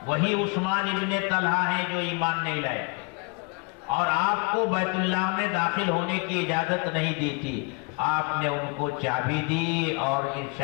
وہی عثمان ابن طلحہ ہیں جو ایمان نہیں لائے اور آپ کو بیت اللہ میں داخل ہونے کی اجازت نہیں دی تھی۔ آپ نے ان کو چابی دی اور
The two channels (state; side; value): quieter; right; 33.4 dB